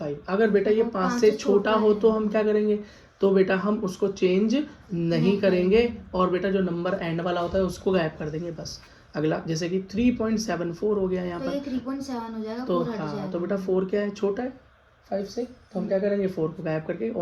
अगर बेटा ये 5 से छोटा हो तो हम क्या करेंगे, तो बेटा हम उसको चेंज नहीं करेंगे, और बेटा जो नंबर एंड वाला होता है उसको गायब कर देंगे बस। अगला जैसे कि 3.74 हो गया यहाँ पर, 3.7 हो जाएगा, तो हाँ, तो बेटा 4 क्या है, छोटा है 5 से, तो हम क्या करेंगे, 4 को गायब करके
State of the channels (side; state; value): both; identical; correlation 1.00